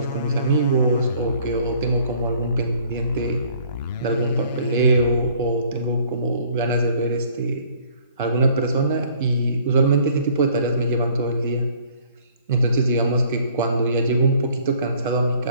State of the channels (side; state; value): both; inverted; correlation -0.57